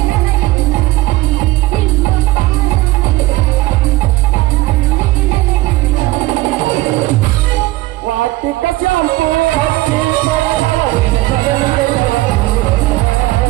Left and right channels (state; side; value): quieter; left; 18.5 dB